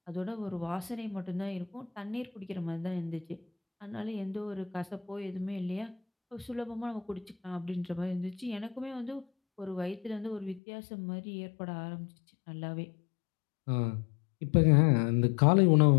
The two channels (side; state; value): right; drops out; at 10.6 s